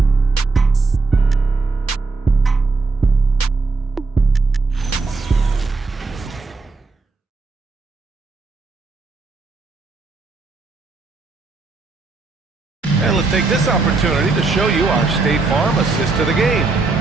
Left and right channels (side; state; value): left; quieter; 3.9 dB